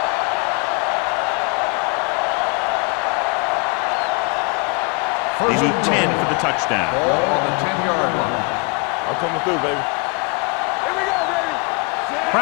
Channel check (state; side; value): quieter; right; 31.7 dB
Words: They need 10 for the touchdown. Ball on the 10-yard line. I'm coming through, baby. Here we go, baby.